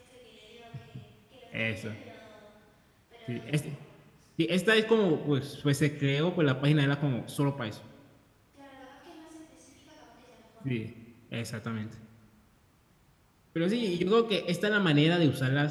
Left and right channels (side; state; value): both; identical; correlation 1.00